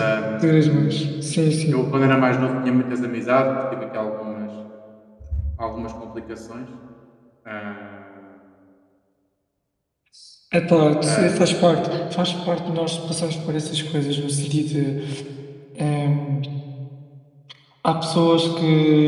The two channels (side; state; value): both; identical; correlation 1.00